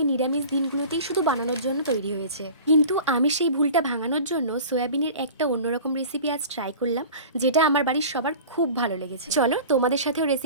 নিরামিষ দিনগুলোতেই শুধু বানানোর জন্য তৈরি হয়েছে, কিন্তু আমি সেই ভুলটা ভাঙানোর জন্য সয়াবিনের একটা অন্যরকম রেসিপি আজ ট্রাই করলাম, যেটা আমার বাড়ির সবার খুব ভালো লেগেছে। চলো তোমাদের সাথেও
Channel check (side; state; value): both; inverted; correlation -0.39